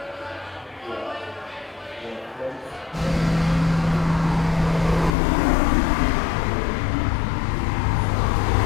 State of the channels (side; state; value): right; drops out; at 5.2 s